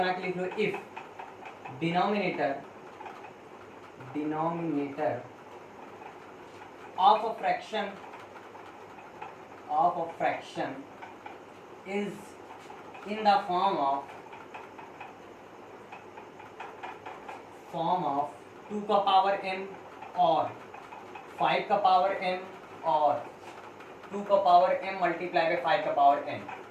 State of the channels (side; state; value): both; identical; correlation 1.00